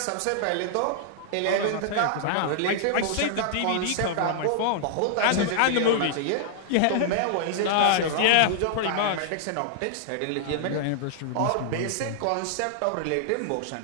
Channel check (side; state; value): both; different; correlation -0.01